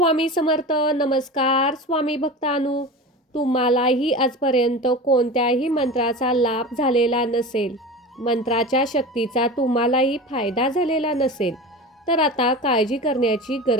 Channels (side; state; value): both; normal; correlation 0.31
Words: समर्थ. नमस्कार स्वामी भक्तांनो. तुम्हालाही आजपर्यंत कोणत्याही मंत्राचा लाभ झालेला नसेल, मंत्राच्या शक्तीचा तुम्हालाही फायदा झालेला नसेल, तर आता काळजी करण्याची